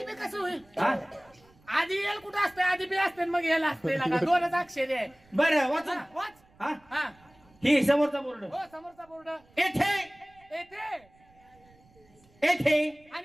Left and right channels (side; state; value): right; noise; rumble, 30 dB below the sound